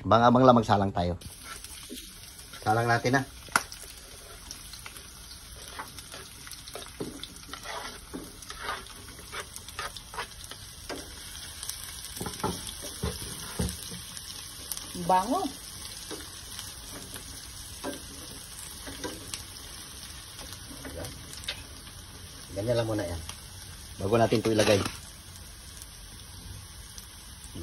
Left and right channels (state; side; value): identical; both; correlation 1.00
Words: abang-abang lang magsalang tayo. Salang natin na. Bango. Ganyan lang muna yan. Bago natin ito ilagay.